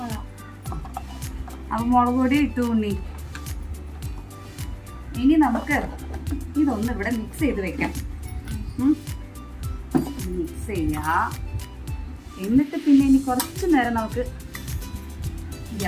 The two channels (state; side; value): identical; both; correlation 1.00